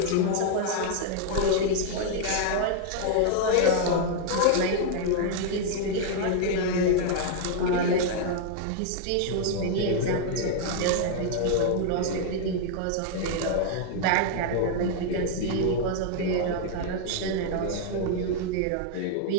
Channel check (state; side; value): different; both; correlation 0.00